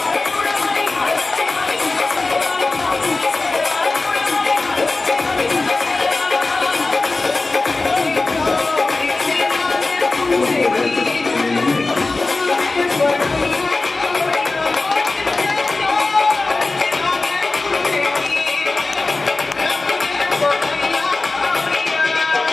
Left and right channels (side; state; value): right; quieter; 3.4 dB